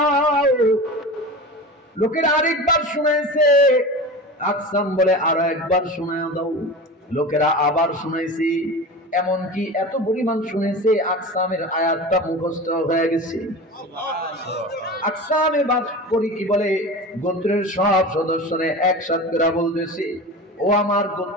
লোকেরা আরেকবার শুনাইছে। আকসাম বলে আরো একবার শোনায় দাও। লোকেরা আবার শুনাইছে। এমনকি এত পরিমাণ শুনেছে আকসামের আয়াতটা মুখস্থ হয়ে গেছে। আকসাম এবার করি কি বলে গোত্রের সব সদস্যরা একসাথে করে বলতেছে, ও আমার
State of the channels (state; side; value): normal; both; correlation 0.31